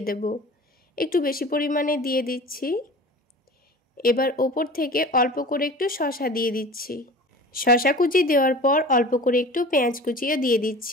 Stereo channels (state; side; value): normal; both; correlation 0.39